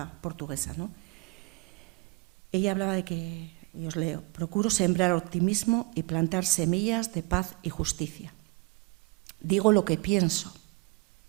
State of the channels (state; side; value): quieter; left; 26.7 dB